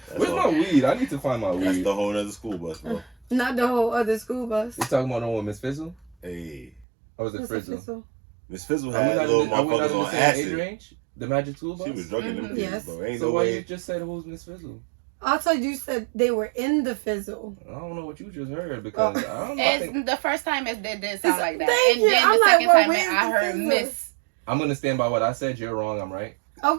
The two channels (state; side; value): drops out; left; at 6.9 s